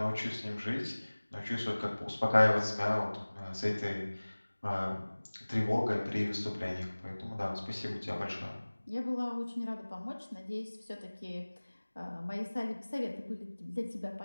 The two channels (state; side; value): inverted; both; correlation -1.00